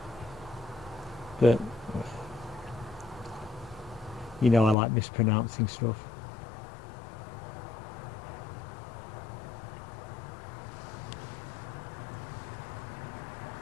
But You know I like mispronouncing stuff.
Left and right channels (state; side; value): drops out; right; at 4.8 s